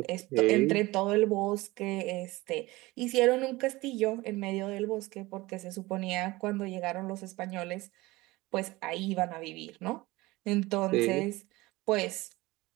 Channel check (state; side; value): quieter; left; 20.5 dB